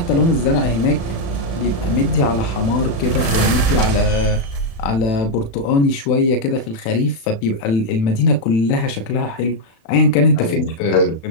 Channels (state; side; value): late; right; 36 ms